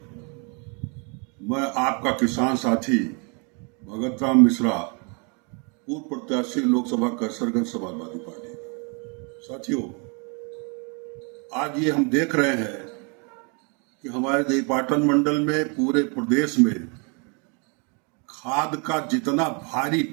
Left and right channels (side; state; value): left; quieter; 34.8 dB